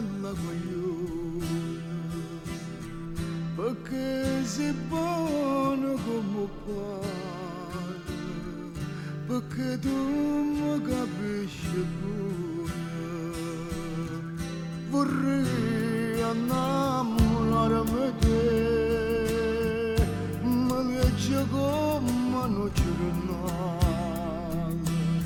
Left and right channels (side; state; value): both; identical; correlation 1.00